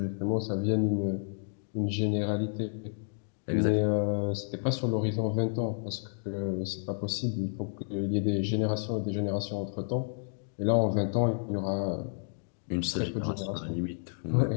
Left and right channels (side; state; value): right; silent; digital silence